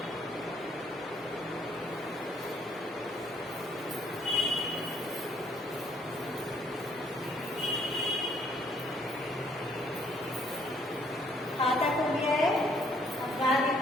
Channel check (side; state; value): both; normal; correlation 0.65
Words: खाता को दिया है, अब गा